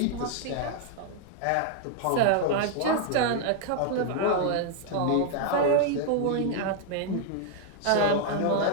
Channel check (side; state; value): both; different; correlation 0.00